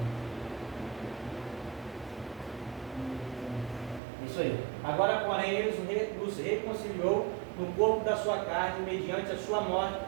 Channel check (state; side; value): drops out; left; at 4.0 s